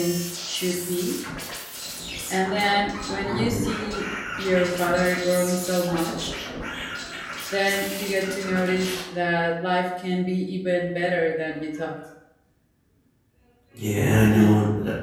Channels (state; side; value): identical; both; correlation 1.00